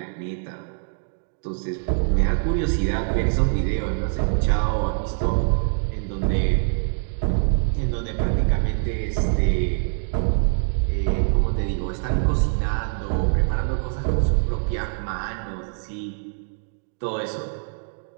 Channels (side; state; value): left; silent; digital silence